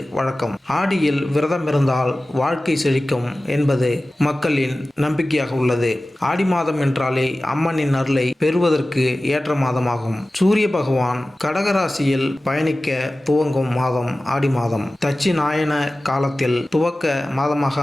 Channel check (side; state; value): both; normal; correlation 0.96